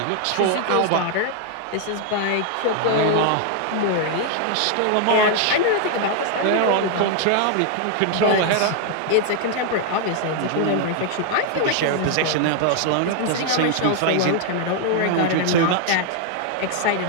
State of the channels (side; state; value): both; different; correlation 0.00